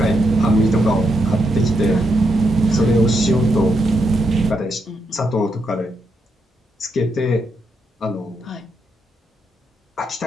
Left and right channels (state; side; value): normal; both; correlation 0.81